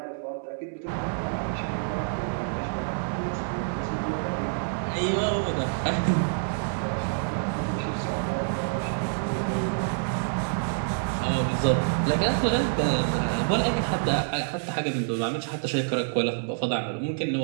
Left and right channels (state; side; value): silent; left; digital silence